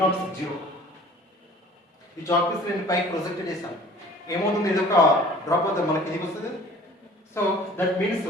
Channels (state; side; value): normal; both; correlation 0.48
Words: 0. ఈ chalk piece నేను పైకి project చేశాను, ఏమవుతుంది, ఇది ఒక drop అవుతుంది, మనకి కిందికి వస్తుంది. So that means